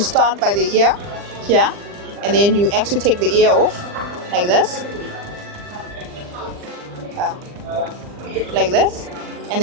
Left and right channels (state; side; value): late; left; 40 ms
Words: start by the ear here, and then you actually take the ear off like this, like this, and